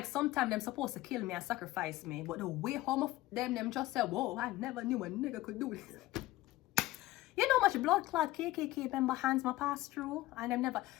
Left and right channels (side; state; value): right; quieter; 17.4 dB